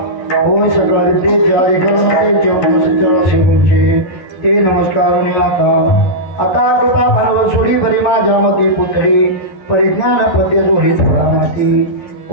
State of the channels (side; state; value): right; late; 11 ms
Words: होय सकळ विद्येचे अधिकरण त्यांचे सचरा शिवूंचे ते नमस्कार आता कृपा भांडव सोडी बरी माझ्या मते पुतळी परिज्ञान पद्य जोडी थोडा माती